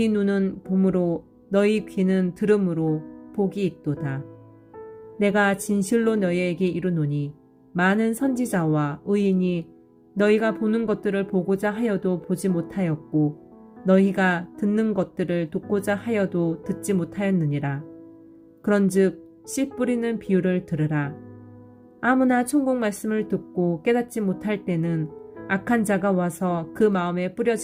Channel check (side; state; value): both; identical; correlation 1.00